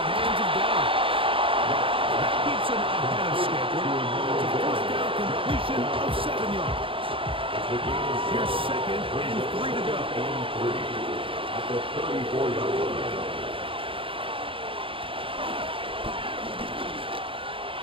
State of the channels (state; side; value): late; left; 0.26 ms